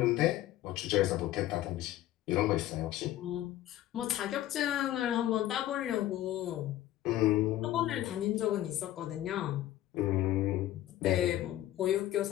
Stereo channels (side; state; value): right; quieter; 14.0 dB